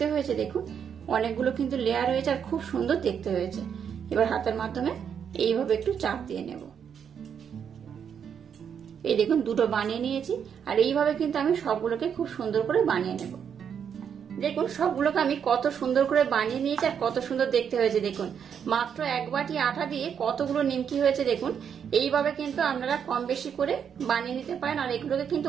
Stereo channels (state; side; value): quieter; left; 7.8 dB